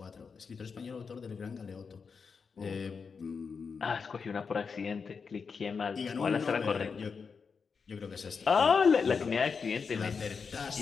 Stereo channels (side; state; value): right; quieter; 5.5 dB